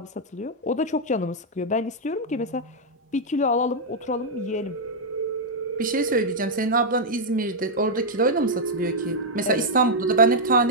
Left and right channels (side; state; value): both; normal; correlation -0.04